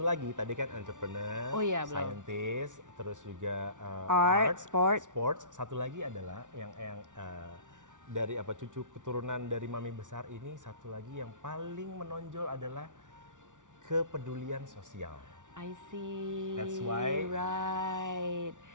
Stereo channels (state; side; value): late; left; 0.87 ms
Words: lagi, tadi kan entrepreneur, scientist, terus juga art, sports. Satu lagi adalah yang dari cucu keturunan dari mami besar ini, satu lagi yang paling menonjol adalah kepedulian sosial. I see. That's why. Right.